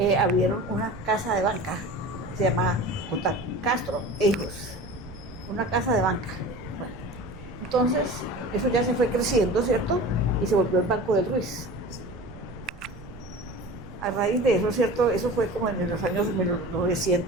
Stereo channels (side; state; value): right; noise; rumble, 17 dB below the sound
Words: abrieron una casa de banca, se llama J. Castro e Hijos, una casa de banca. Bueno, entonces eso ya se fue creciendo, ¿cierto? Y se volvió el Banco del Ruiz. A raíz de eso, ¿cierto? Eso fue como en los años